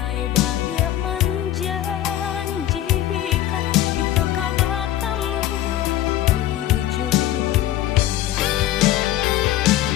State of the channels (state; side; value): quieter; right; 13.3 dB